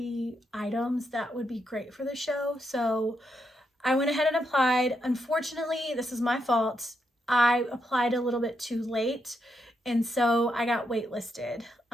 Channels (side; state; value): both; normal; correlation 0.81